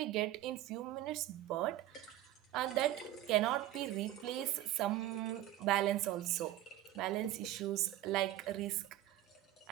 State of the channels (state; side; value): quieter; left; 14.1 dB